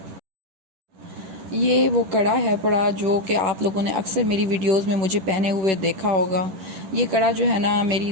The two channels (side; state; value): left; late; 11 ms